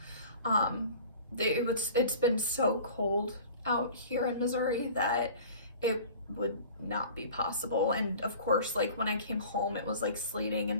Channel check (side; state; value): both; inverted; correlation -0.43